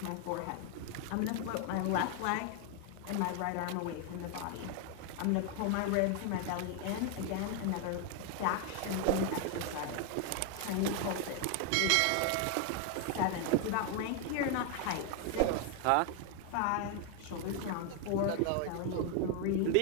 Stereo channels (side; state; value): both; different; correlation 0.01